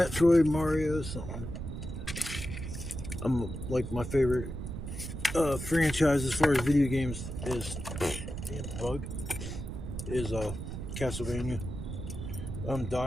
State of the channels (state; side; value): noise; right; rumble, 6 dB below the sound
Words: Mario, something. I'm like, my favorite franchise as far as video games is Castlevania. I'm a